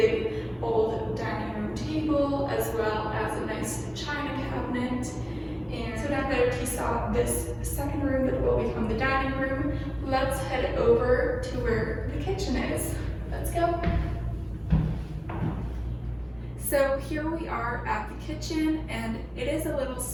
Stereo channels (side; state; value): both; identical; correlation 1.00